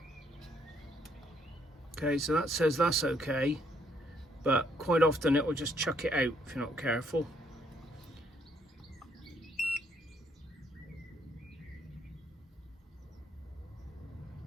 Okay, so that says that's okay, but quite often it will just chuck it out if you're not careful.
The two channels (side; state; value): both; normal; correlation 0.70